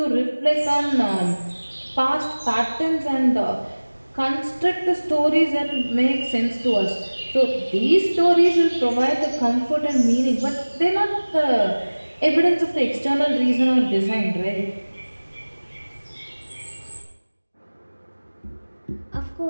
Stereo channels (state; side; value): inverted; both; correlation -1.00